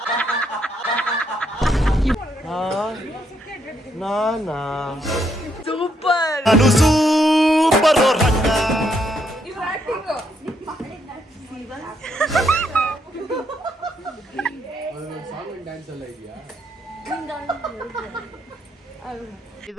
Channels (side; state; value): both; normal; correlation 0.75